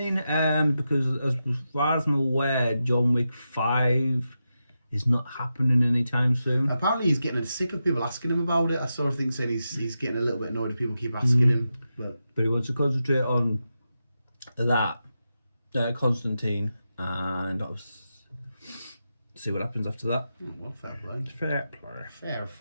because as far as I'm aware, John Wick 5 is not happening anytime soon. Apparently he's getting sick of people asking him about it. I saw a thing said he's getting a little bit annoyed if people keep asking him. But he wants to concentrate on that, Constantine, and see what happens after that. Oh, well, fair play. Fair play. Fair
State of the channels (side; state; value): both; inverted; correlation -0.89